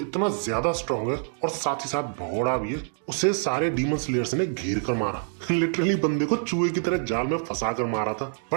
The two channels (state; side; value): silent; left; digital silence